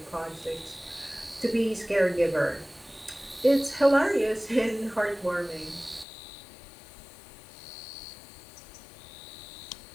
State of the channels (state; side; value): drops out; right; at 6.1 s